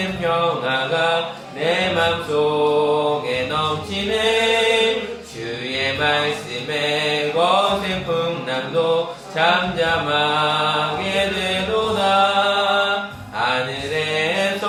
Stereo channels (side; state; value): both; identical; correlation 1.00